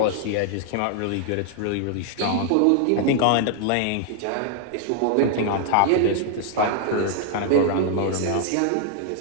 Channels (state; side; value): different; both; correlation 0.00